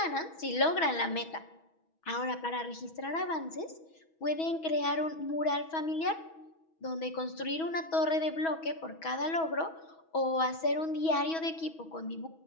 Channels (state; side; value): late; right; 6.2 ms